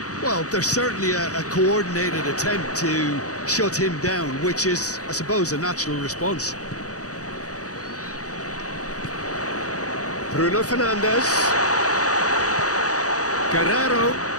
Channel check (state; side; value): late; right; 0.66 ms